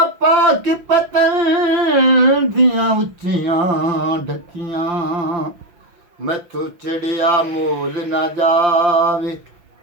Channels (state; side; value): late; left; 6.0 ms